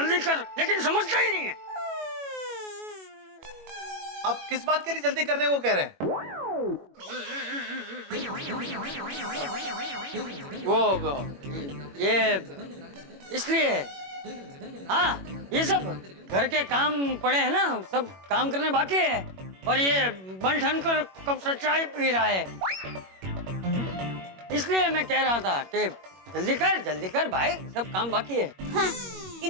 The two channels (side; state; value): left; late; 21 ms